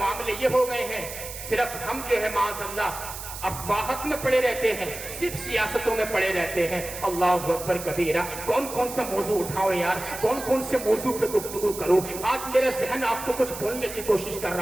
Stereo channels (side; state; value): right; noise; hiss, 10 dB below the sound